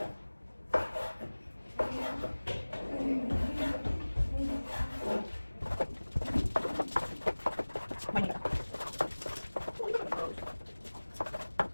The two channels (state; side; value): inverted; both; correlation -1.00